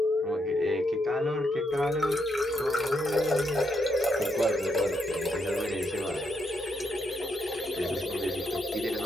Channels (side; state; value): both; normal; correlation 0.78